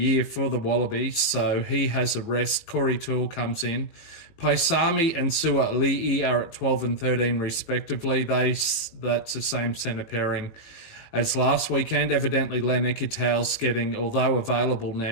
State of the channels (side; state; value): right; late; 18 ms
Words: for the Wallabies, so he has a rest. Corey Toole comes in. Paisami and Sua'ali'i are at 12 and 13 respectively. That's the same centre pairing as last weekend. Evidently Len Ikitau's getting, although available